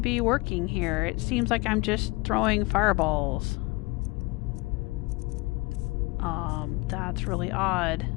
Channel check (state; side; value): quieter; right; 24.6 dB